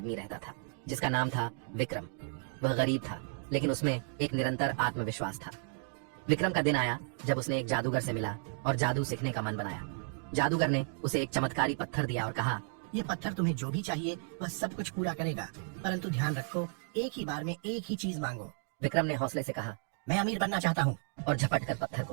रहता था जिसका नाम था विक्रम। वह गरीब था, लेकिन उसमें एक निरंतर आत्मविश्वास था। विक्रम का दिन आया जब उसने एक जादूगर से मिला और जादू सीखने का मन बनाया। जादूगर ने उसे एक चमत्कारी पत्थर दिया और कहा, ये पत्थर तुम्हें जो भी चाहिए वह सब कुछ पूरा करेगा, परंतु ध्यान रखो, एक ही बार में एक ही चीज मांगो। विक्रम ने हौसले से कहा, मैं अमीर बनना चाहता हूँ। और झपट कर पत्थर को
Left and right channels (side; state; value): left; silent; 55 dB below the other